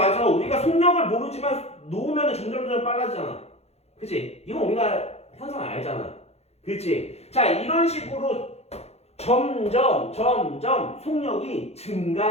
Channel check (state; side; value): late; right; 0.31 ms